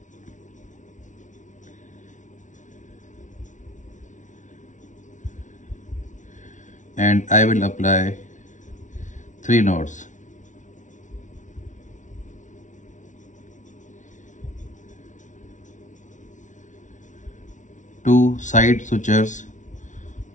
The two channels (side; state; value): right; late; 0.37 ms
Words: And I will apply 3 knots. Two side sutures